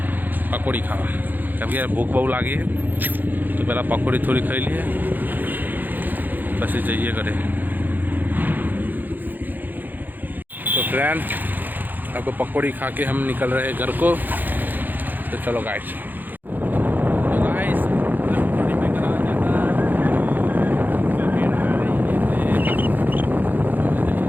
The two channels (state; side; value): late; left; 0.087 ms